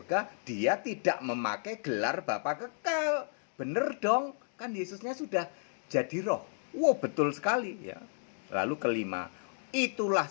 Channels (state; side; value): silent; right; digital silence